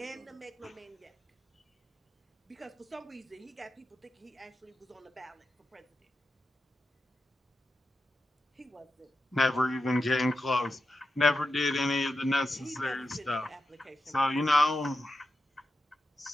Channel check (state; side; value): normal; both; correlation 0.89